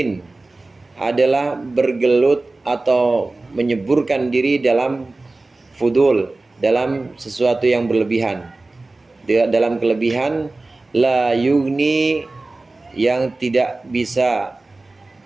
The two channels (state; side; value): quieter; left; 3.2 dB